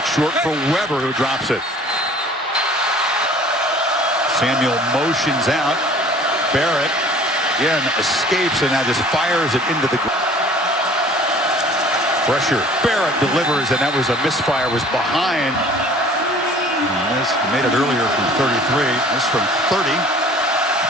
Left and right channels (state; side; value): normal; both; correlation 0.50